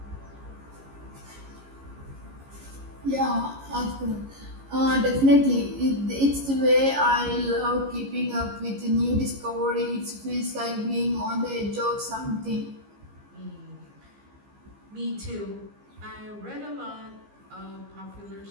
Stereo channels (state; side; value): late; left; 15 ms